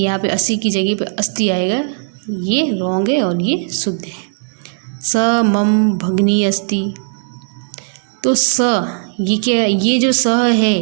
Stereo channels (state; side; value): silent; left; 67 dB below the other